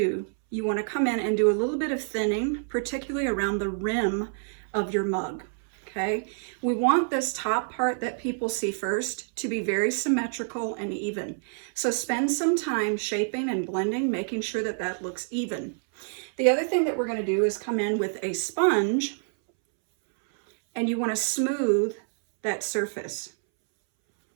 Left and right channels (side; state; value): left; silent; 60 dB below the other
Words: you want to come in and do a little bit of thinning, particularly around the rim of your mug. Okay, we want this top part that people see first to be very symmetrical and even. So spend some time shaping and blending, making sure that that looks even. The other thing that we're going to do is come in with a sponge, and you want to smooth that surface.